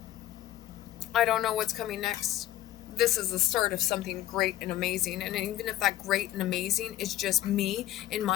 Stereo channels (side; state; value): right; quieter; 13.8 dB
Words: I don't know what's coming next. This is the start of something great and amazing. And even if that great and amazing is just me in